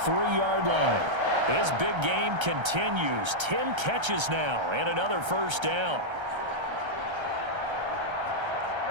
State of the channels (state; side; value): late; left; 1.3 ms